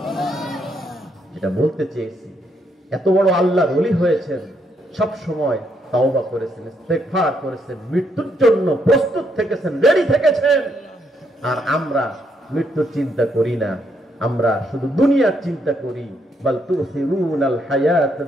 যেটা বলতে চেয়েছি, এত বড় আল্লাহর ওলি হয়েছেন, সব সময় তাওবা করেছেন, ইস্তেগফার করেছেন, মৃত্যুর জন্য প্রস্তুত থেকেছেন, রেডি থেকেছেন। আর আমরা মৃত্যুর চিন্তা করি না, আমরা শুধু দুনিয়ার চিন্তা করি। বাল তুসিরুনাল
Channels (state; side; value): normal; both; correlation 0.75